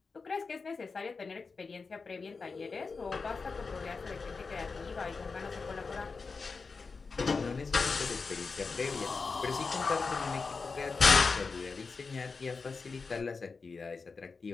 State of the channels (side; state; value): right; quieter; 4.6 dB